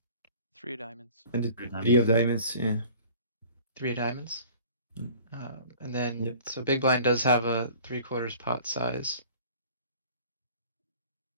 3 of diamonds. And the Three three of diamonds, yeah. 3 of diamonds. Mm. And then, Yep. so big blind does have a 3/4 pot size.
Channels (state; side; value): inverted; both; correlation -0.47